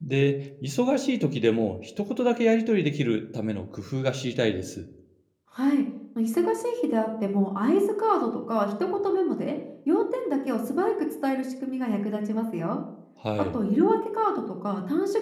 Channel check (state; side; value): identical; both; correlation 1.00